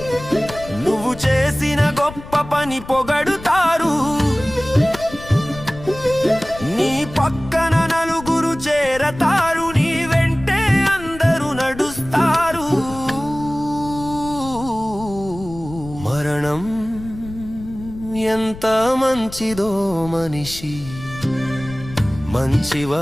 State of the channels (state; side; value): noise; left; rumble, 14 dB below the sound